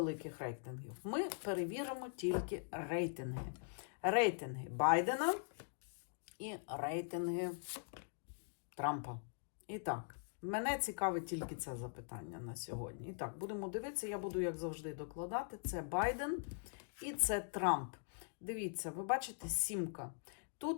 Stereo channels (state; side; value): silent; right; digital silence